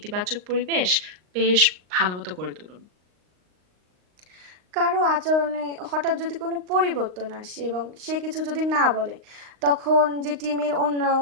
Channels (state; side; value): late; left; 38 ms